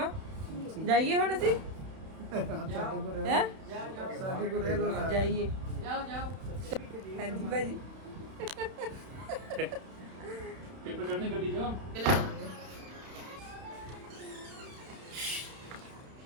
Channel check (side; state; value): left; late; 31 ms